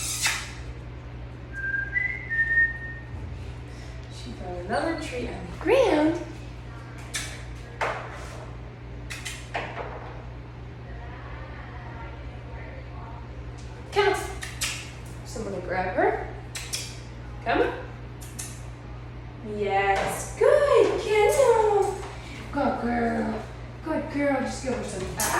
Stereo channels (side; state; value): both; identical; correlation 1.00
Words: She found another treat on the ground. Count. So I'm going to grab her. Come. Yes. Good. Cancel. Good girl. Good girl. Just give her some